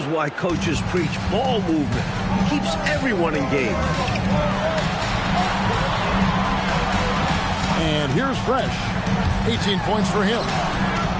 why coaches preach ball movement. It keeps everyone engaged. And here's Fresh. 18 points for him.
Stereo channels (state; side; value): identical; both; correlation 1.00